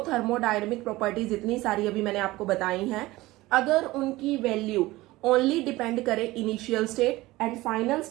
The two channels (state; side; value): quieter; left; 19.0 dB